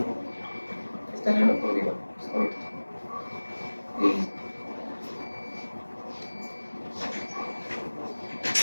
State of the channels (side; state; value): both; inverted; correlation -1.00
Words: Está en el otro libro. Sí.